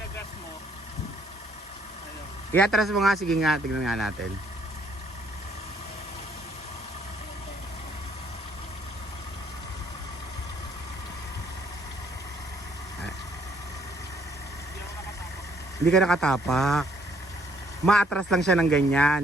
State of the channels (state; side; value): normal; both; correlation 0.66